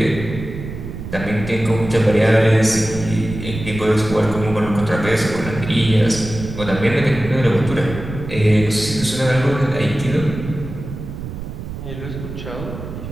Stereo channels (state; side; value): noise; right; rumble, 9 dB below the sound